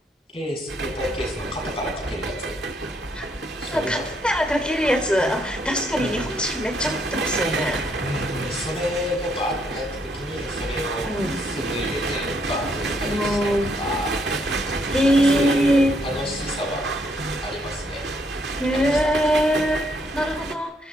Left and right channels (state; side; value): normal; both; correlation 0.72